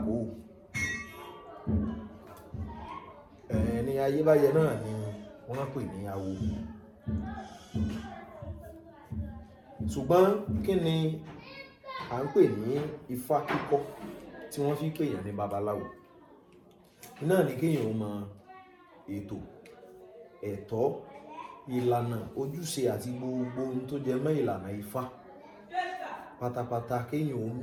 ẹni ayébáyé náà ni wọ́n pè ní awo. Ṣùgbọ́n kí ni à ń pè ní ifá kíkọ́ tí wọ́n fi pèèyàn ní babaláwo? Náà ni kéèyàn mọ ètò, ẹ̀tọ́, ìlànà, ojúṣe àti gbogbo ohun tó jẹ mọ́ ìlànà ifá pátápátá. Kéèyàn ó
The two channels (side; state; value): both; identical; correlation 1.00